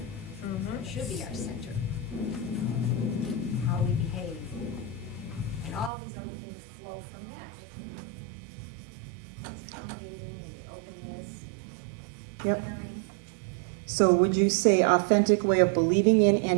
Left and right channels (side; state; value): left; drops out; at 5.9 s